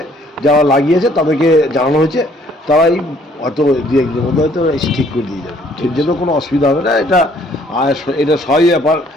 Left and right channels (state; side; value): normal; both; correlation 0.62